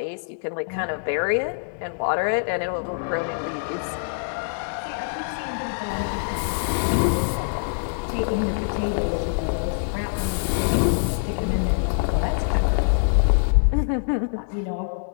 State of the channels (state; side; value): silent; right; digital silence